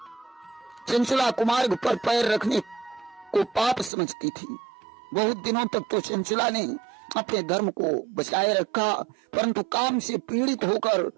चंचला कुमार्ग पर पैर रखने को पाप समझती थी। बहुत दिनों तक तो चंचला ने अपने धर्म को बचाए रखा, परंतु काम से पीड़ित होकर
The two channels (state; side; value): drops out; left; at 3.9 s